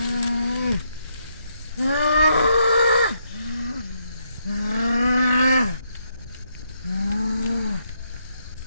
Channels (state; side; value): inverted; both; correlation -0.77